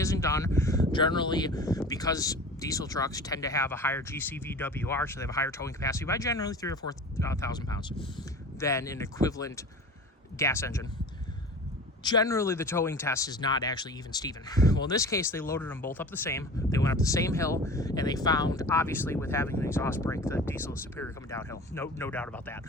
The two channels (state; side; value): normal; both; correlation 0.38